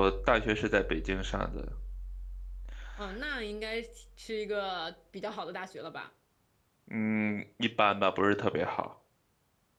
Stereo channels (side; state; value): both; identical; correlation 1.00